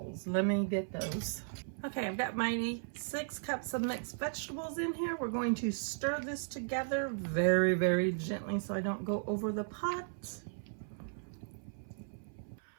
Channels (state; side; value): silent; left; 54 dB below the other